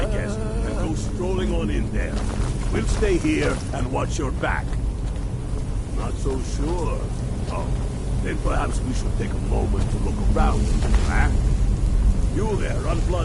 guest and go strolling on in there. We'll stay here and watch your back. Not so sure. Oh, then perhaps we should take a moment to look around. Huh? You there,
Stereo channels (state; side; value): identical; both; correlation 1.00